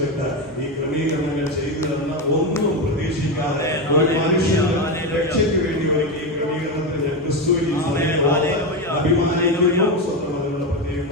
ഈ ക്രമീകരണങ്ങൾ ചെയ്തു തന്ന ഒന്നും പ്രതീക്ഷിക്കാതെ ഒരു മനുഷ്യന് രക്ഷയ്ക്ക് വേണ്ടി ഒരുക്കി ഈ ക്രമീകരണത്തിൽ ഞാൻ ക്രിസ്തുവിനെ അഭിമാനിക്കുന്നു. സ്വന്തം അതിനുള്ള പ്രത്യേകം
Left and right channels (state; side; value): normal; both; correlation 0.13